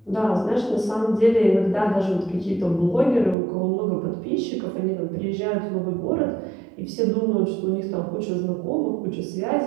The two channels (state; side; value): drops out; left; at 3.4 s